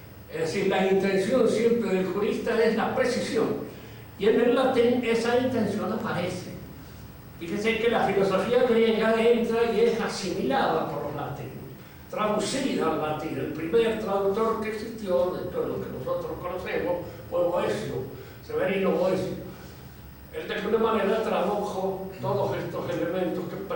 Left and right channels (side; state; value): both; identical; correlation 1.00